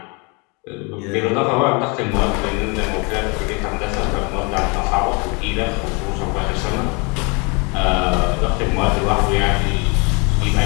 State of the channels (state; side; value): quieter; right; 30.6 dB